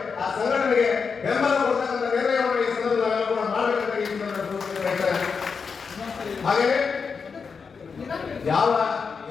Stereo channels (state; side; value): quieter; right; 5.5 dB